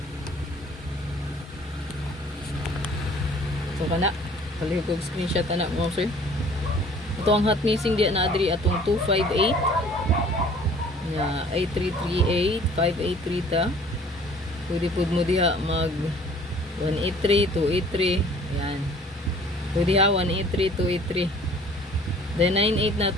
So kana. Palihog og screenshot ana mo sir. Ito ang hot missing di na adri atong 258 na 8338 583 ta. Pwede pud mo diha mag 183, 283, yan. Pwede ha, 183, 283. Then 98 na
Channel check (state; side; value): normal; both; correlation 0.52